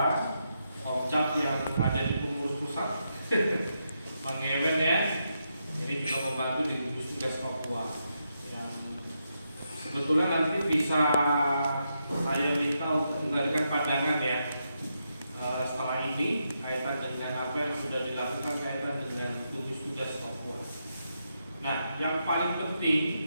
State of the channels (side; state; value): both; inverted; correlation -0.83